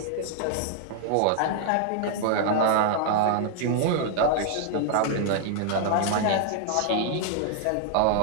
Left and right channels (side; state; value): both; different; correlation -0.01